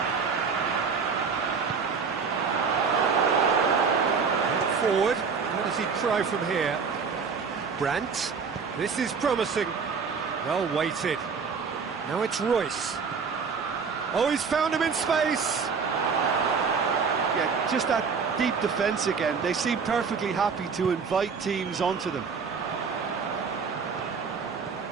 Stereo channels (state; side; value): quieter; left; 5.6 dB